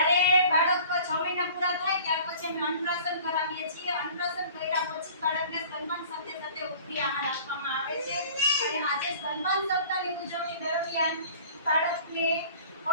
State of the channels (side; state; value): both; inverted; correlation -0.46